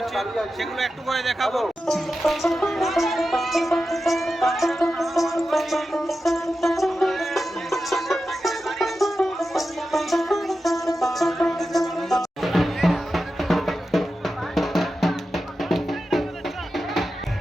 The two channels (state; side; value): normal; both; correlation 0.91